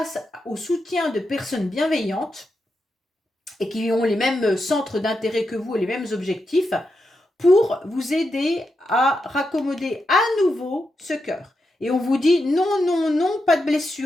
au soutien de personnes bienveillantes et qui ont les mêmes centres d'intérêt que vous et les mêmes objectifs pour vous aider à raccommoder à nouveau ce cœur. Et on vous dit non, non, non, pas de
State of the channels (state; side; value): normal; both; correlation 0.86